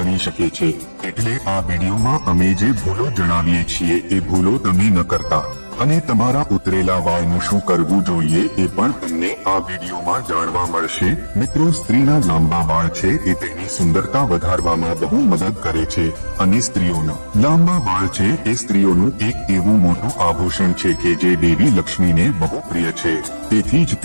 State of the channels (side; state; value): both; inverted; correlation -1.00